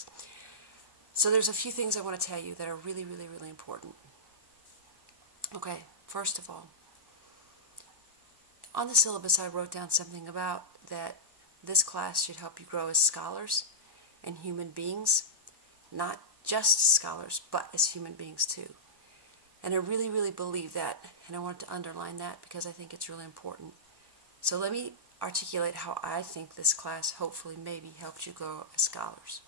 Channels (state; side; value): late; left; 1.2 ms